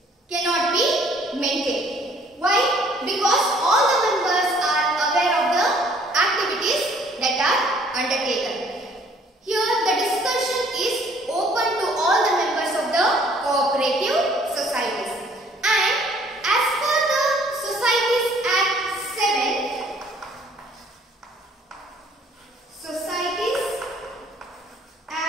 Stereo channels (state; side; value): normal; both; correlation 0.59